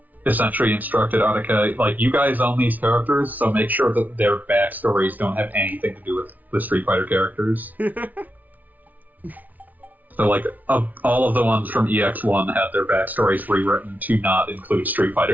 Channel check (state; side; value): late; left; 0.077 ms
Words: essentially instructed Attica, like, you guys own these characters, so make sure that their backstories don't have anything to do with the Street Fighter characters. So, like, all of the ones from EX1 had their backstories rewritten to not include Street